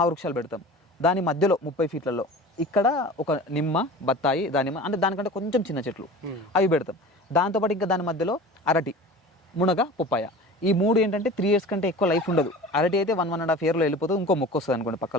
పెడతాం. దాని మధ్యలో 30 feetలలో ఇక్కడ ఒక నిమ్మ, బత్తాయి, దానిమ్మ, అంటే దానికంటే కొంచెం చిన్న చెట్లు అవి పెడతాం. దాంతోపాటు ఇంకా దాని మధ్యలో అరటి, మునగ, పొప్పాయ, ఈ 3 ఏంటంటే 3 years కంటే ఎక్కువ లైఫ్ ఉండదు. అరటి అయితే 1.5 yearలో వెళ్ళిపోతుంది, ఇంకో మొక్క వస్తుంది అనుకోండి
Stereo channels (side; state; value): both; normal; correlation 0.37